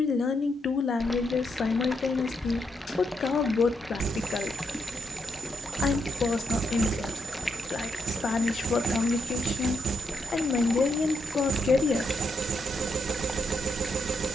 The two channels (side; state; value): both; normal; correlation 0.80